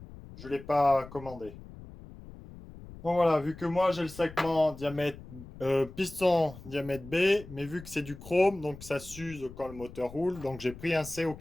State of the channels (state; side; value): noise; left; rumble, 16 dB below the sound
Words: je ne l'ai pas commandé. Bon voilà, vu que moi, j'ai le segment diamètre piston diamètre B, mais vu que c'est du chrome, donc ça s'use quand le moteur roule, donc j'ai pris un C au